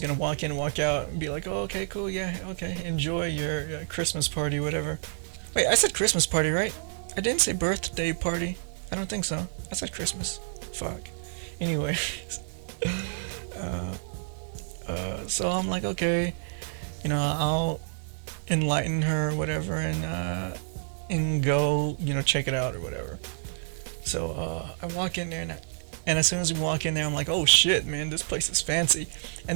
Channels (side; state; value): left; silent; digital silence